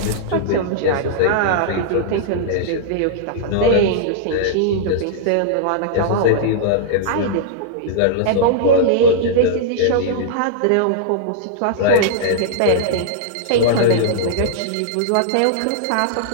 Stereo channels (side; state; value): both; different; correlation -0.02